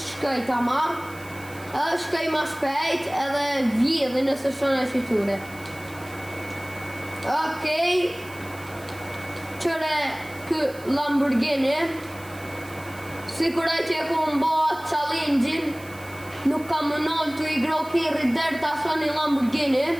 ta ma, edhe shkaj ma shpejt edhe vjedhe nëse shone e shiture. Okej, qëre kë Lamborghini, sikuraj që e ku më bëha challenge-in, nuk ka më nëllë të i gro kjerët dherë ta shoni Lamborghini.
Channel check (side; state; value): right; noise; hiss, 21 dB below the sound